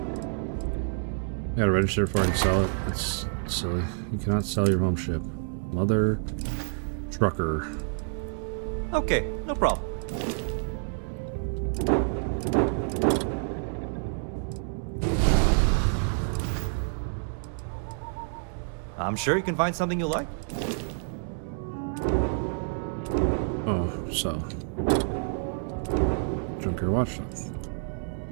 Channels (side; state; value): left; silent; 59 dB below the other